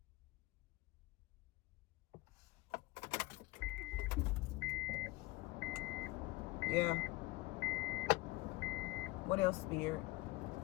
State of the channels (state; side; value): quieter; right; 20.9 dB